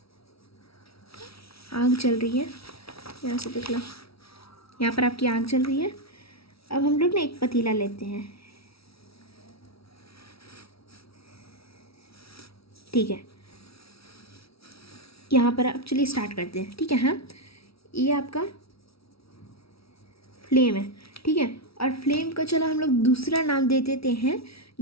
आग चल रही है, यहाँ से देख लो, यहाँ पर आपकी आग चल रही है। अब हम लोग ना एक पतीला लेते हैं, ठीक है। यहाँ पर आप चलिए स्टार्ट करते हैं, ठीक है। हाँ, ये आपका फ्लेम है, ठीक है। और फ्लेम का चलो हम लोग दूसरा नाम दे देते हैं,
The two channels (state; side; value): late; right; 0.76 ms